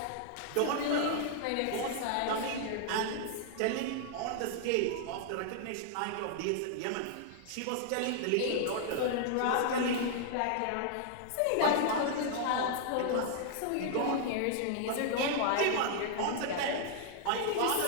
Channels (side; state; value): both; different; correlation -0.01